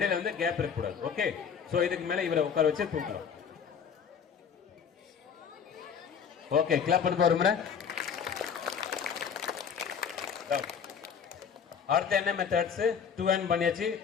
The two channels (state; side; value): quieter; right; 7.0 dB